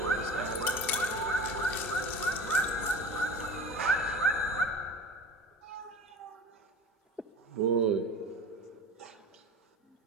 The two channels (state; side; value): normal; both; correlation 0.36